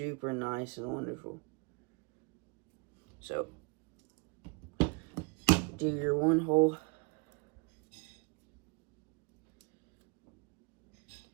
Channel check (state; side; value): quieter; left; 31.1 dB